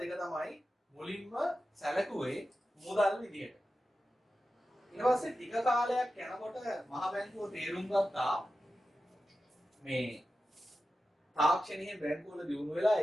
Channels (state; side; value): normal; both; correlation 0.92